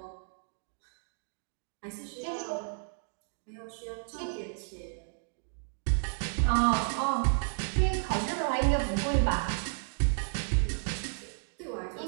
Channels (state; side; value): silent; left; digital silence